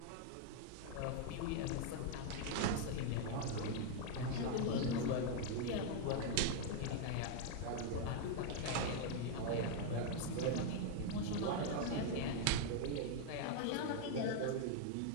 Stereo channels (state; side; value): different; both; correlation 0.00